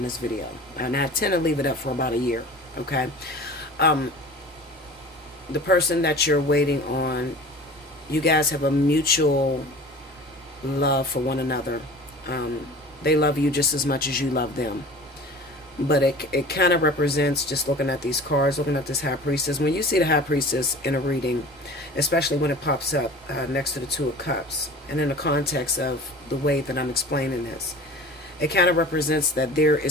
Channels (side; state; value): both; normal; correlation 0.40